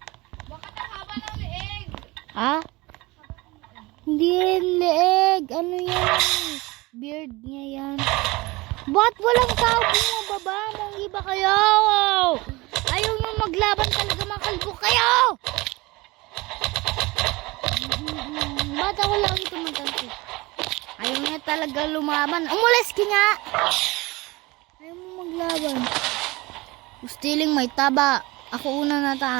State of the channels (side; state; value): left; quieter; 22.5 dB